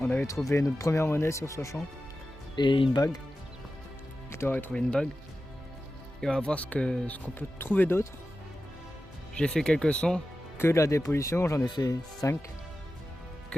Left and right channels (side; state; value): both; normal; correlation 0.93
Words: avait trouvé notre première monnaie sur ce champ et une bague. Victor avait trouvé une bague. Et on va voir ce qu'on peut trouver d'autre. J'ai fait quelques sons, que la dépollution, j'en ai fait 5,